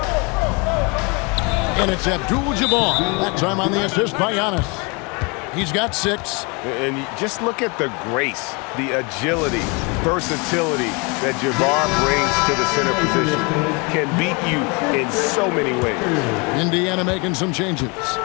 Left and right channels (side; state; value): right; quieter; 29.8 dB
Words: And it's Abdul Jabbar. That time on the assist by Giannis. He's got 6. And just look at the grace, the agility, versatility that Jabbar brings to the center position. Can beat you in so many ways. Indiana making some changes.